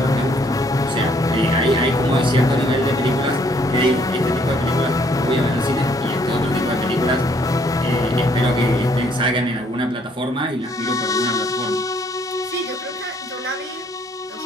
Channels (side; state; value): both; normal; correlation 0.66